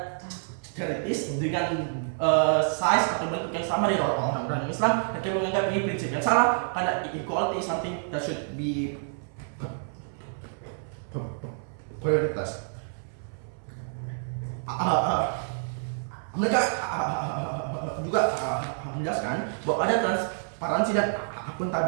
charities dengan size atau bentuk yang sama dengan orang-orang Islam. Mereka menganggap ini prinsip yang salah karena equality is something that should be prioritas. Mereka juga menjelaskan bahwa ada transparansi dan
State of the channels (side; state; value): left; silent; 59 dB below the other